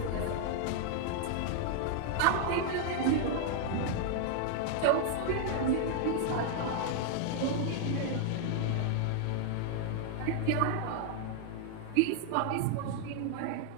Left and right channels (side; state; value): both; different; correlation 0.00